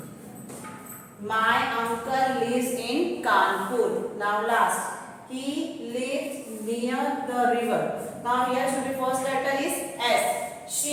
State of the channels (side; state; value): both; identical; correlation 1.00